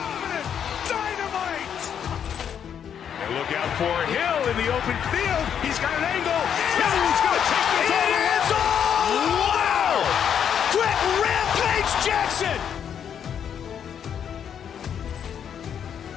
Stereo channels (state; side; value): quieter; right; 8.4 dB